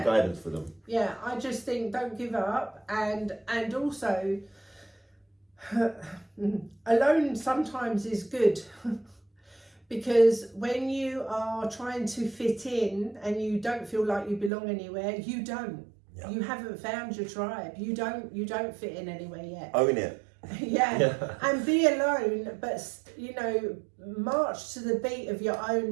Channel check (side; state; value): left; drops out; at 14.5 s